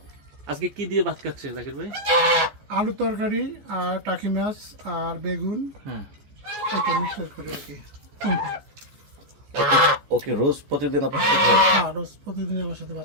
আজকে কি দিয়ে ভাত খাচ্ছে জাকির ভাই? আলু তরকারি আর টাকি মাছ আর বেগুন, হ্যাঁ, এটা মিক্সচার করে আর কি। ওকে রোজ প্রতিদিন আপনার সাথে খায়? হ্যাঁ, রোজ প্রতিদিন আমার সাথে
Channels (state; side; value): late; left; 14 ms